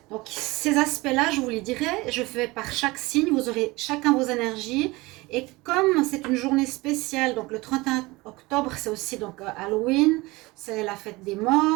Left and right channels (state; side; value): quieter; left; 22.2 dB